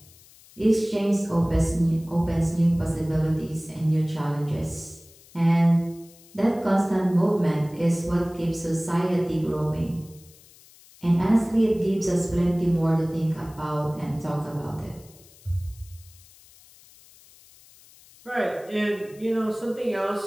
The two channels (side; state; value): left; noise; hiss, 25 dB below the sound